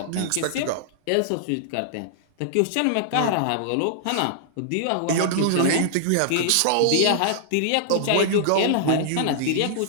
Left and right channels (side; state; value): both; different; correlation -0.01